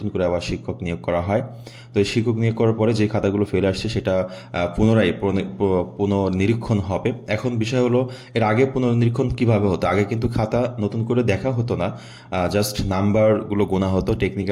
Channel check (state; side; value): identical; both; correlation 1.00